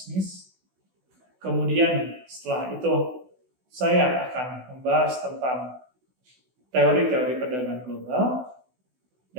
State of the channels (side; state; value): left; late; 16 ms